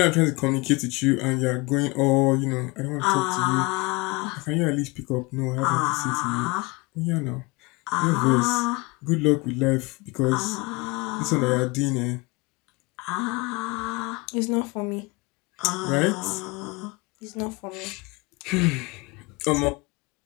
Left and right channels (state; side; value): quieter; right; 25.5 dB